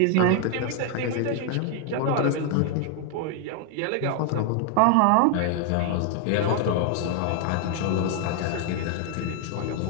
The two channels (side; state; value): both; different; correlation 0.01